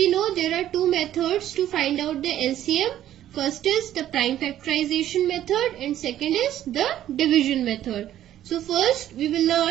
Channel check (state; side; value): quieter; left; 12.1 dB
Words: know, there are two methods to find out the LCM. First is the prime factorization method and second is the division method. So first we will